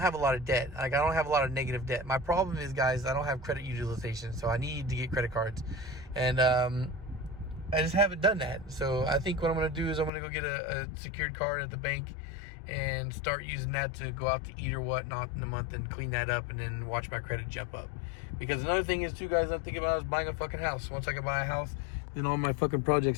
a lot of debt. I don't have a lot of negative debt. My problem is, guys, I don't have credit utilization, so I need to get credit cards, and I just haven't done that. So I think what I'm gonna do is I'm gonna go get a secured card at the bank and start using that to go out to eat or whatnot in a month, and clean that up, and then watch my credit jump up. Because another thing is too, guys, I'm thinking about is buying a fucking house. Once I can buy a house, then all my fucking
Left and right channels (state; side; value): drops out; right; at 10.1 s